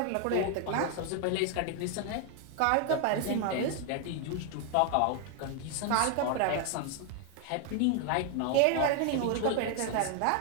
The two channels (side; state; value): both; different; correlation 0.01